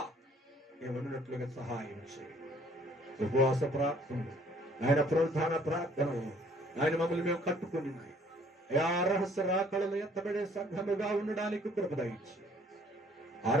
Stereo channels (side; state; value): both; normal; correlation 0.60